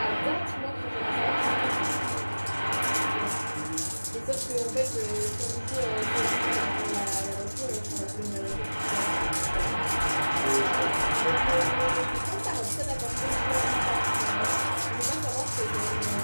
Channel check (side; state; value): both; inverted; correlation -1.00